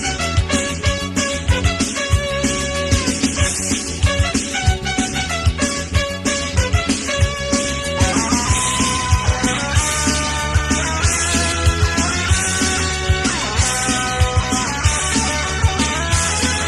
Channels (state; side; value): identical; both; correlation 1.00